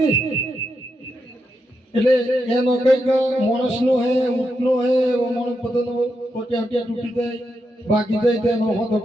એટલે એનો કઈક માણસનો હે ઊંટનો હે ઓ માણસ બધાનો પોટિયા હટિયા તૂટી જાય બાકી જાય તેનો હોતો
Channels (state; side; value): normal; both; correlation 0.84